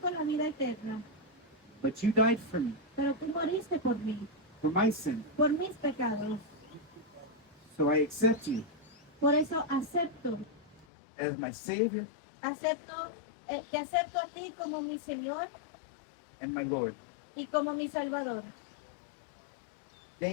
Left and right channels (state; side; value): drops out; right; at 10.9 s